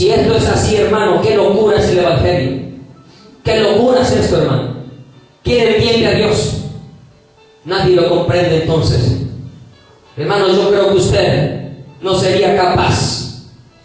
esto es así, hermano, qué locura es el Evangelio. ¿Qué locura es esto, hermano? ¿Quién entiende a Dios? Nadie lo comprende entonces. Hermano, yo creo que usted no sería capaz.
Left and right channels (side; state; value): both; identical; correlation 1.00